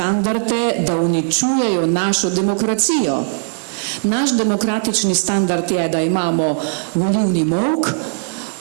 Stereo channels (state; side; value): silent; left; 67 dB below the other